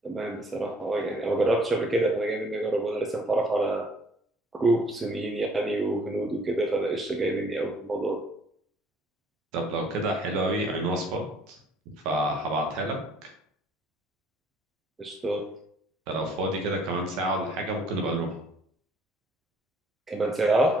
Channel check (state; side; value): normal; both; correlation 0.59